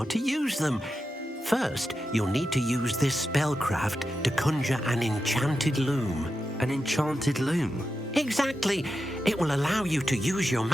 to use them. First, you'll need to use this spellcraft to conjure an enchanted loom. An enchanted loom? Exactly. It will allow you to use your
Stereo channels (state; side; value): normal; both; correlation 0.89